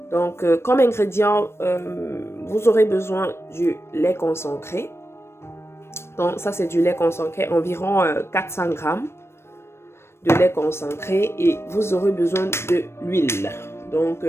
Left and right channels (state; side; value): late; right; 0.12 ms